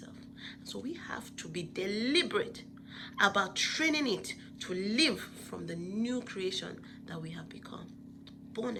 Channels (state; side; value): identical; both; correlation 1.00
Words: So we have to be deliberate about training it to live from the new creation that we have become, born